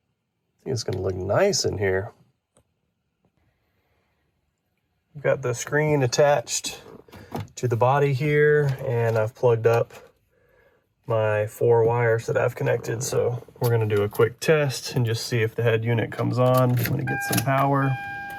think it's gonna look nice in here. We've got the screen attached to the body here, and I've plugged up my 4 wires that I've connected. So we're gonna do a quick test and just see if the head unit comes on when it gets some power.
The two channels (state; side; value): identical; both; correlation 1.00